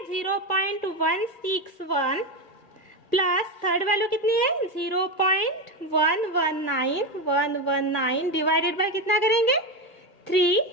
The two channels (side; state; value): right; late; 1.6 ms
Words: 0.161 प्लस थर्ड वैल्यू कितनी है 0.119 डिवाइडेड बाय कितना करेंगे 3.